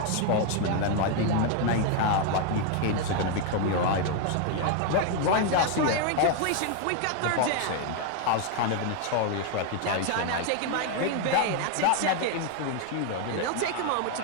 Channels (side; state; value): both; different; correlation 0.00